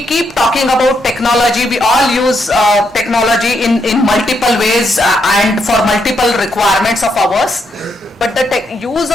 keep talking about technology. We all use technology in multiple ways and for multiple requirements of ours. But the use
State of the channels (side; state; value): both; normal; correlation 0.78